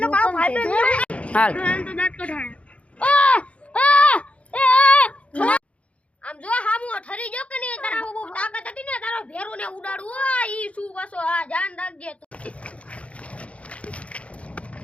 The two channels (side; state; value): right; late; 0.063 ms